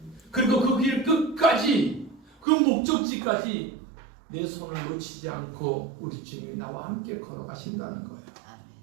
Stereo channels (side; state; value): left; drops out; at 2.5 s